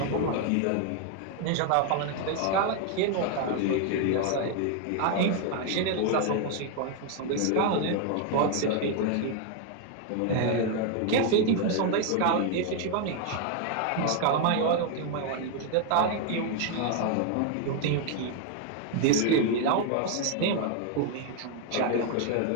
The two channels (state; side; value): different; both; correlation 0.00